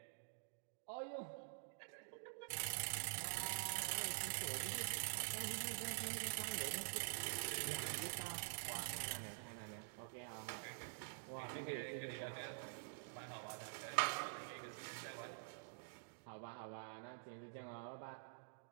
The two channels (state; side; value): silent; left; digital silence